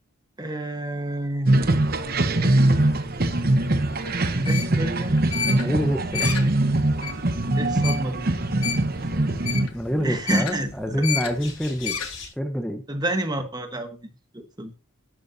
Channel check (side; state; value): both; normal; correlation 0.75